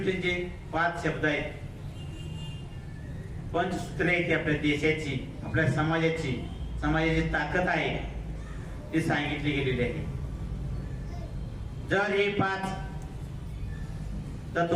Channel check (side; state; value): both; identical; correlation 1.00